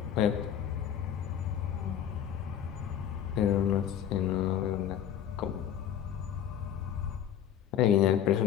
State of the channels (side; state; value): right; quieter; 9.7 dB